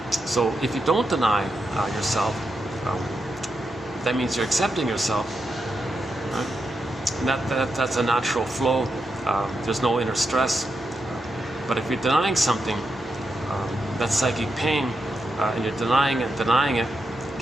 So if you don't deny yourself, that means you're accepting yourself. Right? And that's a natural flow. There's no inner stress. But if you're denying something, that's psychic pain, and you're denying it,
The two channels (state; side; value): normal; both; correlation 0.85